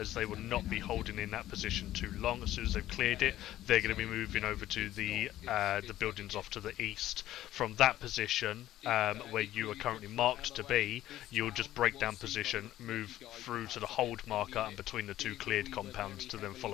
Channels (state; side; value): quieter; right; 13.9 dB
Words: as they will not be holding in that position too long. As soon as they've cleared it, they're going to be moving over to the buildings off to the east. From that position, where you are currently marked to be, you'll just break down position, move through to the hold marker and between the 2 cleared compounds to then